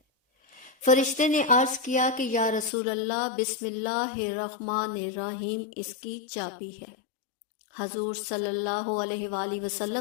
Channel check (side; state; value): right; drops out; at 2.7 s